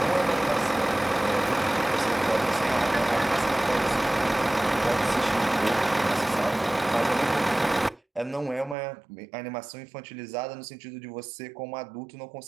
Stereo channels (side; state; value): left; drops out; at 8.8 s